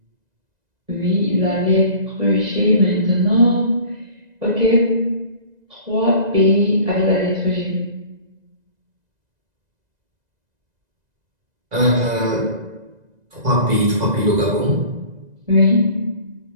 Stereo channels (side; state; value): left; late; 2.0 ms